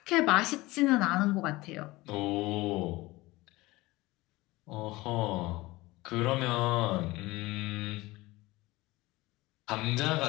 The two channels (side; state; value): right; quieter; 20.3 dB